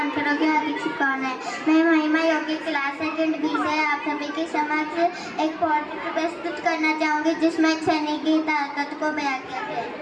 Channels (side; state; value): both; identical; correlation 1.00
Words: की हार्दिक शुभकामनाएं। मैं महिमा योगी क्लास सेकंड बी से आप सभी के समक्ष एक पोएट्री प्रस्तुत करना चाहूँगी जिसमें एक सैनिक की ताकत को बयां किया गया